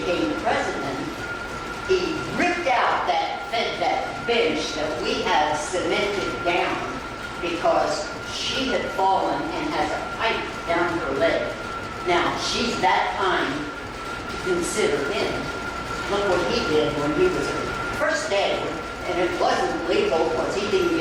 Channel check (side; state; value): both; identical; correlation 1.00